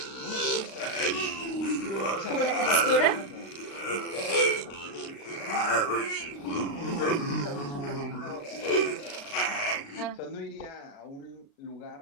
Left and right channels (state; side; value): late; right; 36 ms